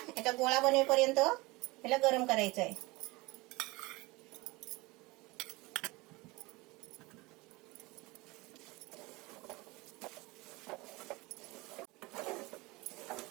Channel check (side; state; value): left; quieter; 23.0 dB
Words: याचा गोळा बनेपर्यंत याला गरम करायचं आहे.